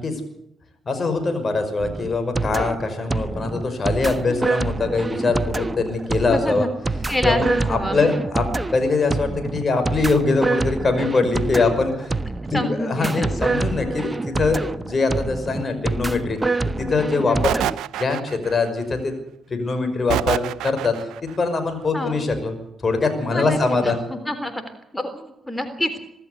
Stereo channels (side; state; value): both; normal; correlation 0.82